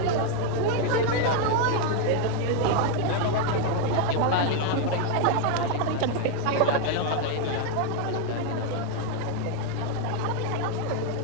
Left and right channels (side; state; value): both; different; correlation 0.01